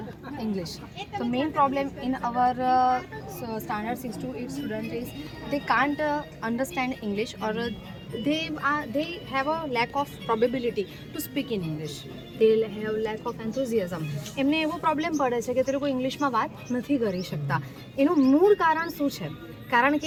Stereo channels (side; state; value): both; identical; correlation 1.00